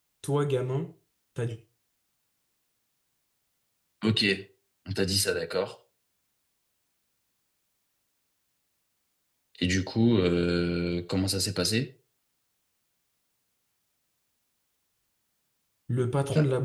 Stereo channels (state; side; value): identical; both; correlation 1.00